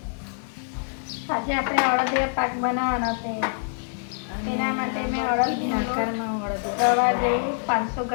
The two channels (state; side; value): silent; right; digital silence